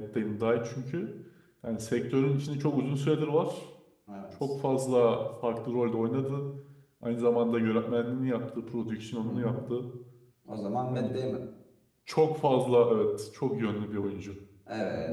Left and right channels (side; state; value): both; identical; correlation 1.00